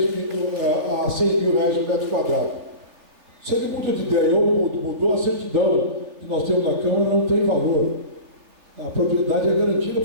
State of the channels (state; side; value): late; left; 3.3 ms